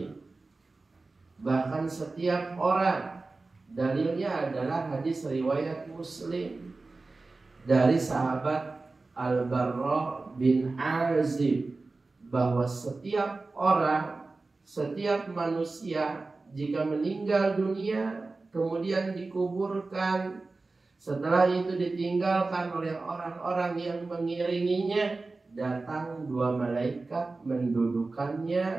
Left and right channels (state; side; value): quieter; left; 3.6 dB